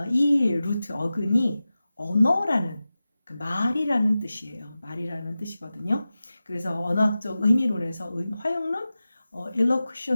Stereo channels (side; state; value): both; inverted; correlation -0.95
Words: 이 루트 어근이 언어라는 그 말이라는 뜻이에요. 말이라는 뜻이거든요. 그래서 언어학적 의미론에서 화용론